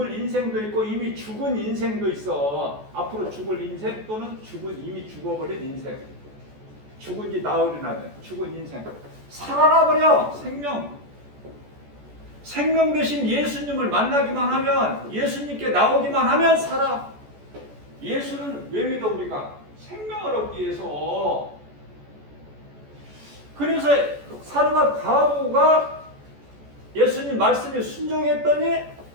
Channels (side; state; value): left; late; 14 ms